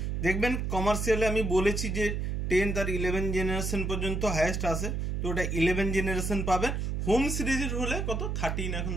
দেখবেন কমার্শিয়ালে আমি বলেছি যে 10 আর 11 জেনারেশন পর্যন্ত হাইয়েস্ট আসে, তো ওটা 11 জেনারেশন পাবেন। হোম সিরিজের হলে কত 13, এখন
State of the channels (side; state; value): right; noise; hum, 1 dB below the sound